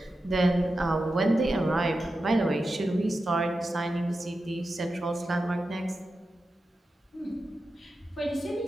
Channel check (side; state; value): both; normal; correlation 0.91